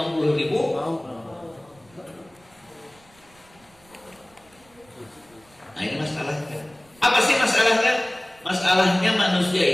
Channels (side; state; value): right; noise; rumble, 29 dB below the sound